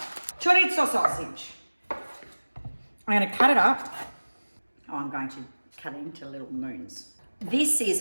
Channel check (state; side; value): inverted; both; correlation -1.00